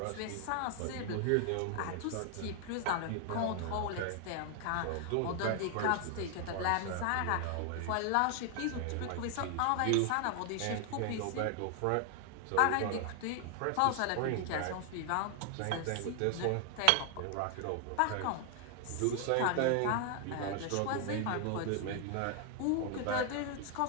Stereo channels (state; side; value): different; both; correlation 0.00